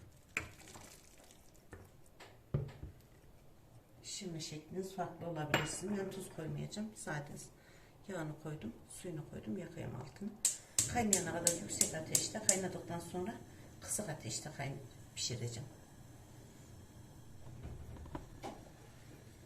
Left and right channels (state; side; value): identical; both; correlation 1.00